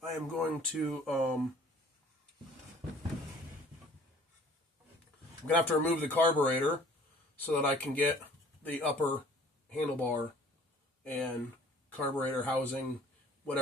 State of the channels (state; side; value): normal; both; correlation 0.52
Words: I am going to I'm going to have to remove the carburetor so that I can get the upper handlebar and carburetor housing,